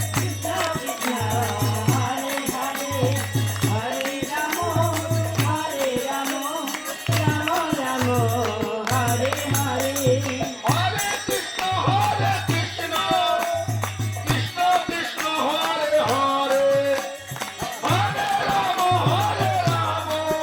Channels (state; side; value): identical; both; correlation 1.00